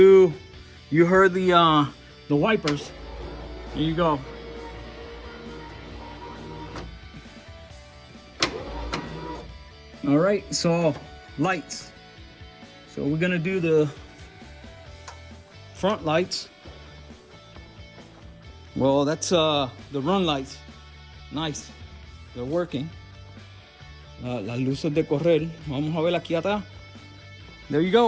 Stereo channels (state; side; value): identical; both; correlation 1.00